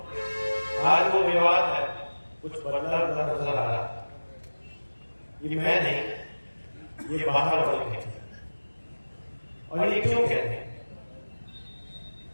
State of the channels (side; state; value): both; inverted; correlation -1.00